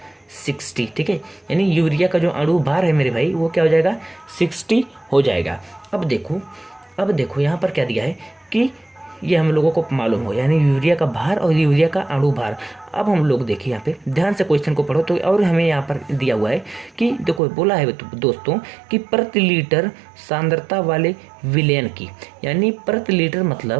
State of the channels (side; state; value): left; drops out; at 17.4 s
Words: 60, ठीक है। यानी यूरिया का जो अणु भार है मेरे भाई वो क्या हो जाएगा, 60 हो जाएगा। अब देखो यहाँ पर क्या दिया है कि ये हम लोगों को मालूम हो, यानी यूरिया का भार और यूरिया का अणु भार। अब हम लोग देखिए यहाँ पे ध्यान से क्वेश्चन को पढ़ो तो, और हमें यहाँ पर दिया हुआ है कि देखो बोला है दोस्तों कि प्रति लीटर सांद्रता वाले विलयन की, यानी प्रति लीटर